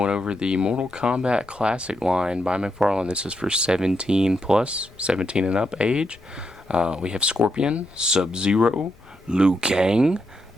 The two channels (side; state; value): left; noise; rumble, 26 dB below the sound